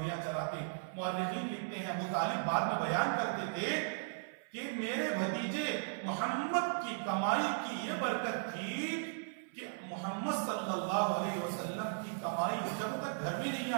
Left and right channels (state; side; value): silent; left; 53 dB below the other